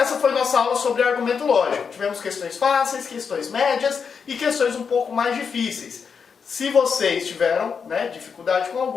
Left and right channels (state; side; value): quieter; right; 6.1 dB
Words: foi nossa aula sobre argumento lógico. Tivemos questões fáceis, questões médias e questões um pouco mais difíceis. Se vocês tiveram dificuldade com